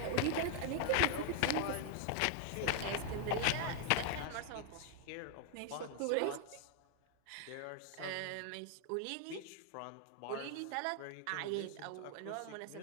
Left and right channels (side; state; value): both; different; correlation 0.00